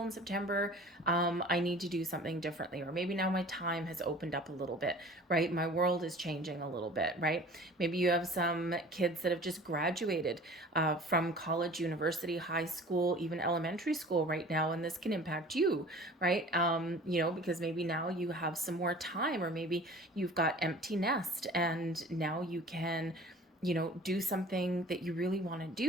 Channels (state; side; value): normal; both; correlation 0.45